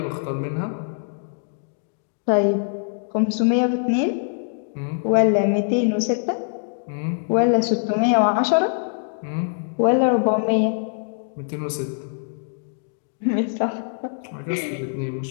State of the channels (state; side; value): silent; right; digital silence